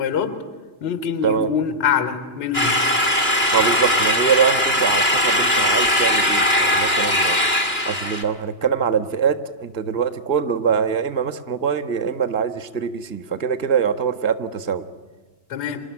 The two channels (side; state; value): right; late; 2.9 ms